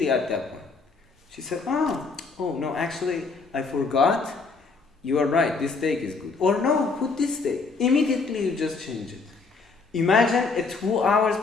at that point, she said, oh no, actually, I forgot. You are right. This take is good. Or no, put this take. Immediately, you just change it. Imagine a 2 hours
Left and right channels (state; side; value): quieter; right; 4.4 dB